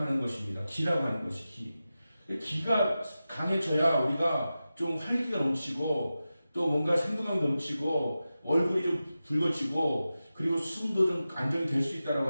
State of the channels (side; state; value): both; inverted; correlation -0.93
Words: 것입니다. 기라고 하는 것이 기. 기가 강해져야 우리가 좀 활기가 넘치고 또 뭔가 생동감이 넘치고 얼굴이 좀 붉어지고 그리고 숨도 좀 안정이 될 수 있다라고